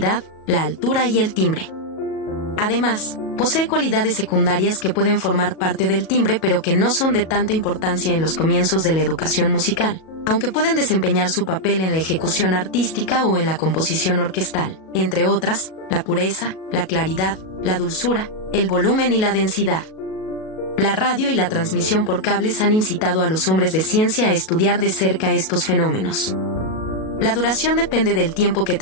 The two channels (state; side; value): late; right; 37 ms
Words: la altura y el timbre. Además, posee cualidades secundarias que pueden formar parte del timbre pero que no son de tanta importancia en los comienzos de la educación musical, aunque pueden desempeñar su papel en la ejecución artística o en la composición orquestal, entre otras, la pureza, la claridad, la dulzura, el volumen y la densidad. La radio y la transmisión por cables han incitado a los hombres de ciencia a estudiar de cerca estos fenómenos. La duración depende del tiempo que